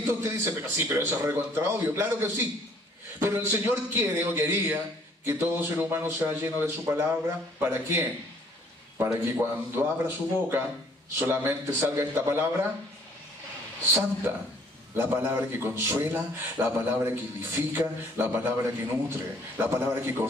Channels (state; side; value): normal; both; correlation 0.59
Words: usted dice, pero sí, pero eso es recontra obvio. Claro que sí. Pero el Señor quiere o quería que todo ser humano sea lleno de su palabra. ¿Para qué? Para que cuando abra su boca solamente salga esta palabra santa, la palabra que consuela, la palabra que edifica, la palabra que nutre, la palabra que